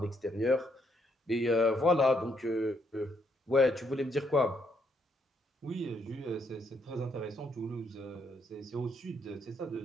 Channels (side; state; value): both; normal; correlation 0.73